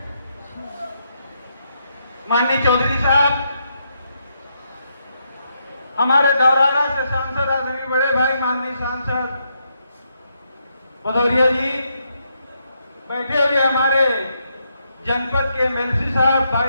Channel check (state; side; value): inverted; both; correlation -0.79